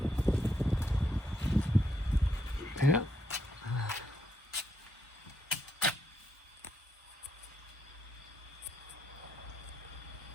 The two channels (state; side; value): normal; both; correlation 0.77